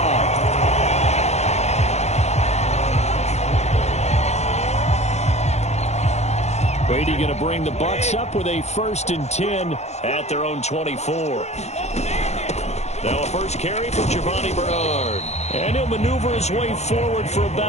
Brady going to bring the Bucs up with a 1st and 10 at their own 24. Now a first carry for Giovanni Bernard. And he'll maneuver his way forward for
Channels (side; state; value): right; late; 0.32 ms